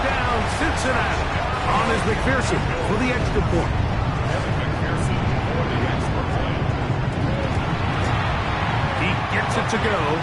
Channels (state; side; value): identical; both; correlation 1.00